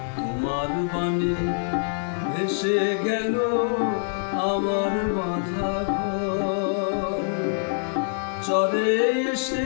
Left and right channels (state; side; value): silent; right; digital silence